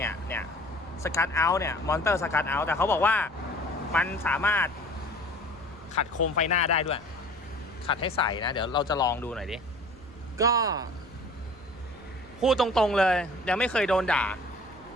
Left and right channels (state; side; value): noise; right; rumble, 25 dB below the sound